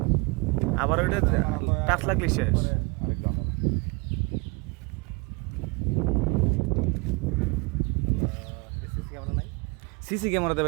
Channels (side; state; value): left; quieter; 29.1 dB